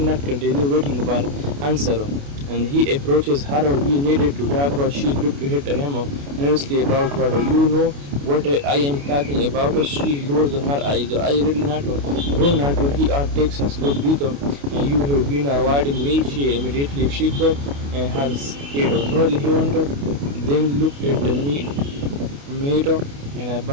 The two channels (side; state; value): left; late; 28 ms